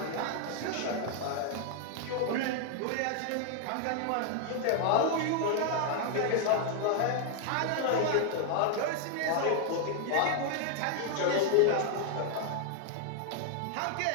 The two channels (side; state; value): both; different; correlation 0.00